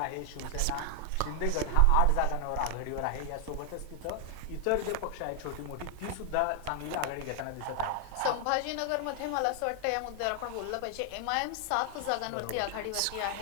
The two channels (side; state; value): both; different; correlation 0.00